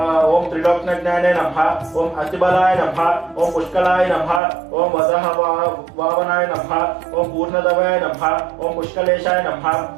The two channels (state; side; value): drops out; left; at 4.4 s